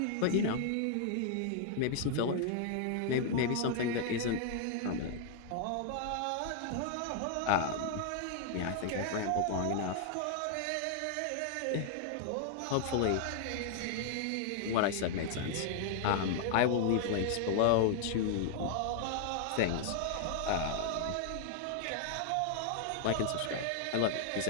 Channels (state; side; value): different; both; correlation 0.00